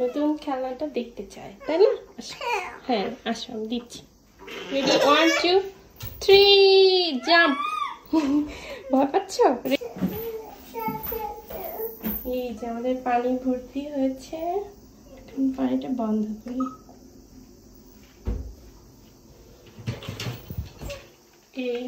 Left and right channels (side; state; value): both; identical; correlation 1.00